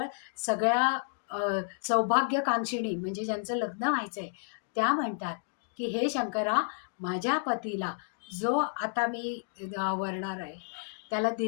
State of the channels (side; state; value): right; silent; digital silence